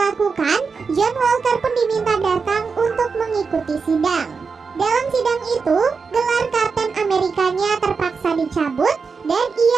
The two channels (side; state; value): left; quieter; 5.1 dB